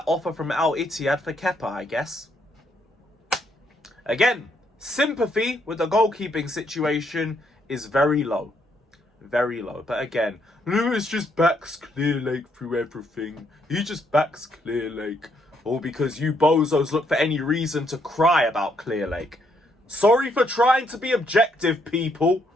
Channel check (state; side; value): normal; both; correlation 0.73